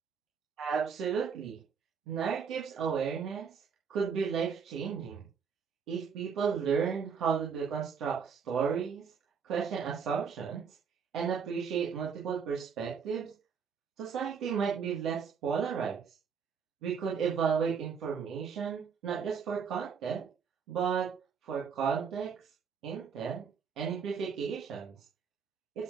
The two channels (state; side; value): quieter; left; 6.5 dB